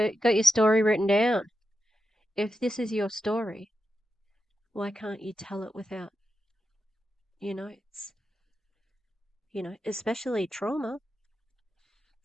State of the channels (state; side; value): normal; both; correlation 0.88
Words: got your story written down. If this is your story, why can't you tell it without notes? Especially trauma.